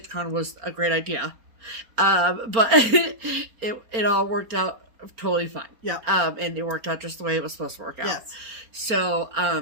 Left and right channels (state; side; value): late; left; 4.3 ms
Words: was a great idea. But it all worked out totally fine. Yeah. And it worked out just the way it was supposed to work out. Yes.